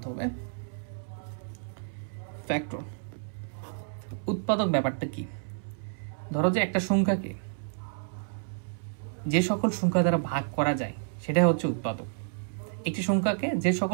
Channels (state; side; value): silent; left; 58 dB below the other